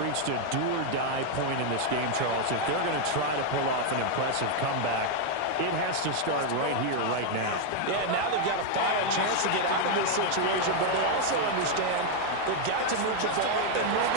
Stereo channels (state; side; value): different; both; correlation 0.00